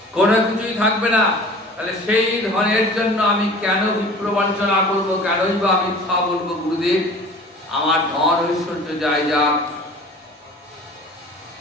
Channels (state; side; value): normal; both; correlation 0.43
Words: কোনো কিছুই থাকবে না। তাহলে সেই ধনের জন্য আমি কেন বিপ্র বঞ্চনা করবো? কেনই বা আমি মিথ্যা বলবো? গুরুদেব, আমার ধন ঐশ্বর্য যাই যাক,